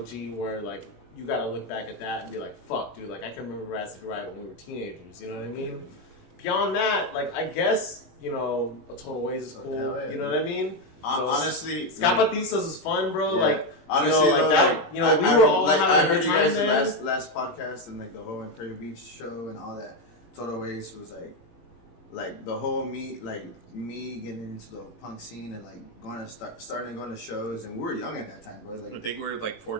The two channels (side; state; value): right; late; 18 ms